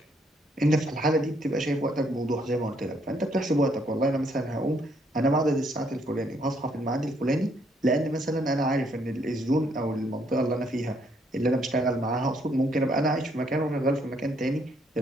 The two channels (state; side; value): normal; both; correlation 0.70